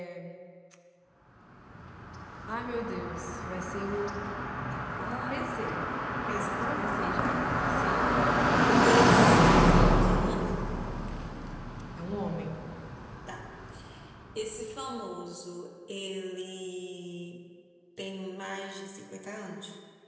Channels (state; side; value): identical; both; correlation 1.00